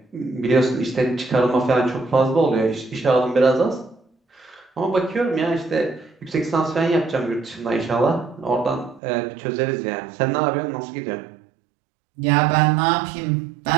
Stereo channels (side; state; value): left; drops out; at 9.0 s